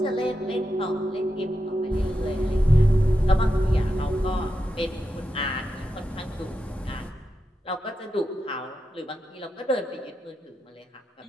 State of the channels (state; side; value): normal; both; correlation 0.88